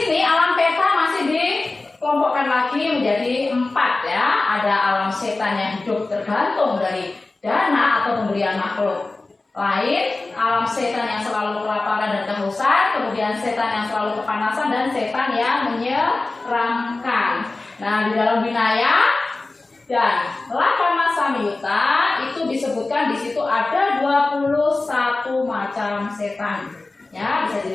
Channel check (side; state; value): right; quieter; 3.3 dB